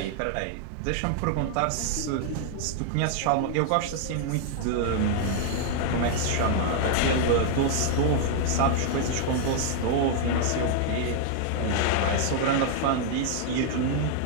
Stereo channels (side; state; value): both; different; correlation -0.01